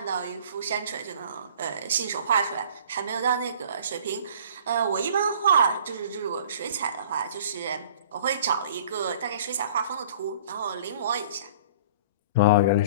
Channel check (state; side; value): inverted; both; correlation -0.48